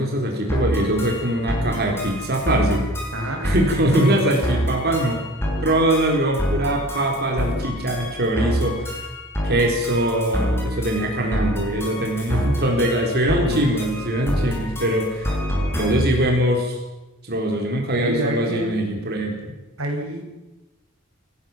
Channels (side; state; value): both; normal; correlation 0.45